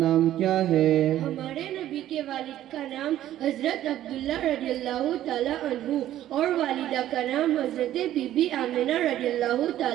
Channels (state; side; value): quieter; left; 12.8 dB